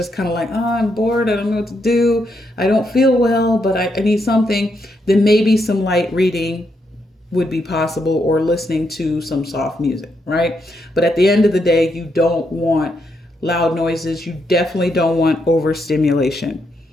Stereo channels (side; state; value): both; normal; correlation 0.79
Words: kind of like, oh, I'm bored. I don't know what to do. I don't feel well, but I need something. Then maybe some light reading would be possible, or listening to some soft music, right? But at the end of the day, you don't want loud noises. You definitely don't want overstimulation.